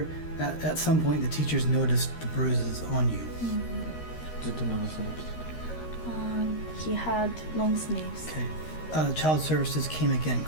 at some point the teachers noticed the bruises on you. ずっと長袖着てた。 He had long sleeves. Okay. Child services came again,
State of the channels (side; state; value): right; late; 13 ms